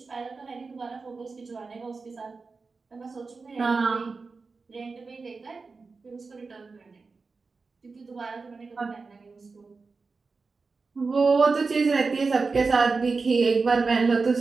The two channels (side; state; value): left; quieter; 4.3 dB